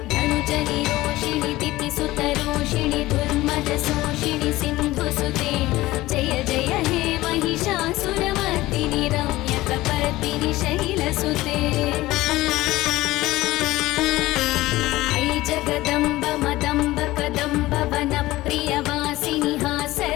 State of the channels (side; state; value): right; quieter; 17.8 dB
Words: धनुजनिरोषिणि दितिसुतरोषिणि दुर्मदशोषिणि सिन्धुसुते जय जय हे महिषासुरमर्दिनि रम्यकपर्दिनि शैलसुते ऐ जगदम्ब मदम्ब कदम्ब वनप्रियवासिनि